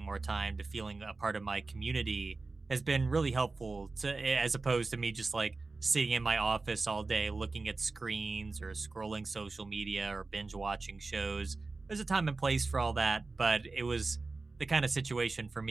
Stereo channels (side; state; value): left; quieter; 3.7 dB